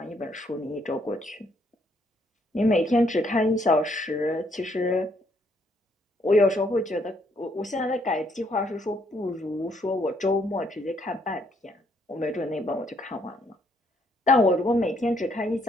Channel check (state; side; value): normal; both; correlation 0.70